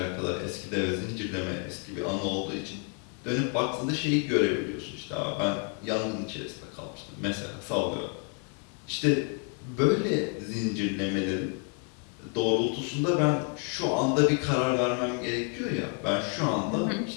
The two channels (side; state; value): right; quieter; 38.9 dB